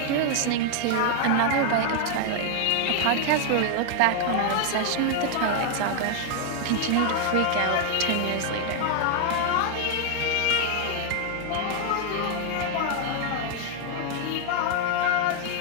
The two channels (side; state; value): both; different; correlation 0.00